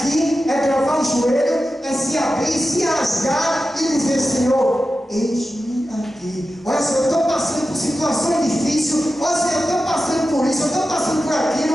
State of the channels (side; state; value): both; normal; correlation 0.92